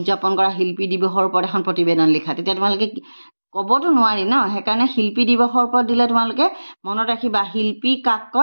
কৰা শিল্পী দিৱসৰ ওপৰত এখন প্ৰতিবেদন লিখা তেতিয়া তোমালোকে ক'বতো নোৱাৰি সেইকাৰণে শিল্পী দিৱসৰ ওপৰত দিলে তোমালোকে মনত ৰাখিবা শিল্পী কাক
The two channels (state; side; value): inverted; both; correlation -1.00